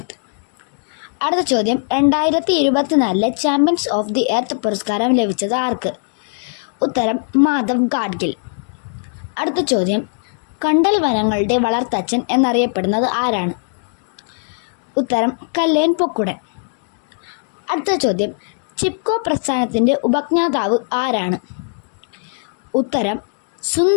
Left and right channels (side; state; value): right; silent; 66 dB below the other